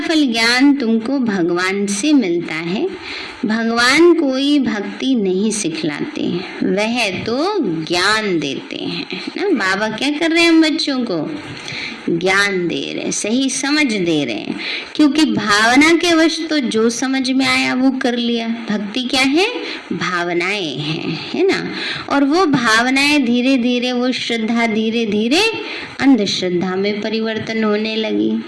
ज्ञान तुमको भगवान से मिलता है। भगवान कोई भक्ति नहीं सिखलाते, वह तो ज्ञान देते हैं ना। बाबा क्या कर रहे हैं हम बच्चों को? ज्ञान दे रहे हैं, सही समझ दे रहे हैं, क्योंकि भावना के वश तो जो समझ में आया वो कर लिया। भक्ति क्या है? भावनाएं हैं, है ना। और वो भावनाएं धीरे धीरे, वो श्रद्धा धीरे धीरे अंधश्रद्धा में परिवर्तन होने लगी,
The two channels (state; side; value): identical; both; correlation 1.00